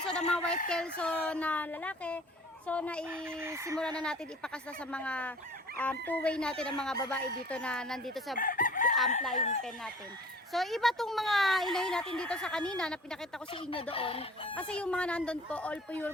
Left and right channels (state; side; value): normal; both; correlation 0.47